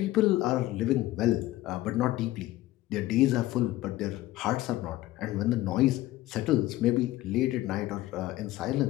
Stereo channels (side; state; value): right; quieter; 16.3 dB